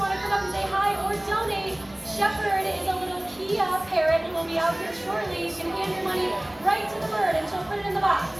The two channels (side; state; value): left; noise; hum, 28 dB below the sound